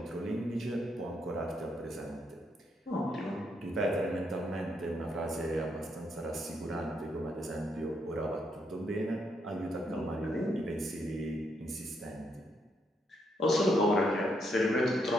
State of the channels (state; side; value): normal; both; correlation 0.77